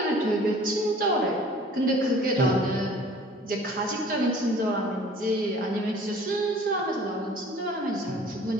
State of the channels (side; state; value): both; normal; correlation 0.50